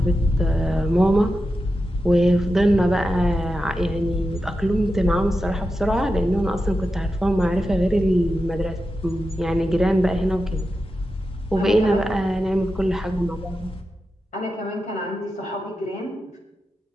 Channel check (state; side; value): normal; both; correlation 0.90